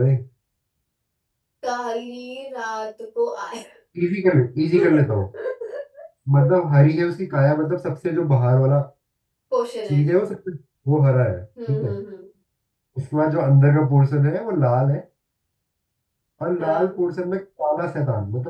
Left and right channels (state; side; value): identical; both; correlation 1.00